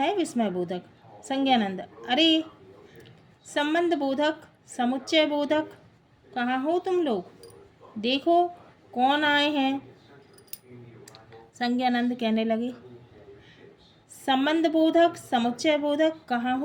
विस्मय बोधक? संज्ञानंद, अरे संबंध बोधक, समुच्चय बोधक, कहाँ हो तुम लोग? देखो कौन आए हैं। संज्ञानंद कहने लगे संबंध बोधक, समुच्चय बोधक, कहाँ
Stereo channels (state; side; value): identical; both; correlation 1.00